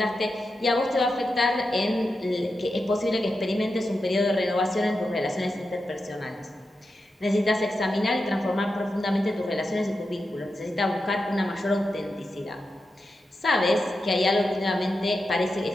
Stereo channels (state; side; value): normal; both; correlation 0.89